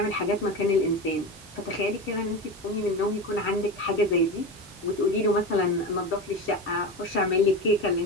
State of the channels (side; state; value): both; normal; correlation 0.24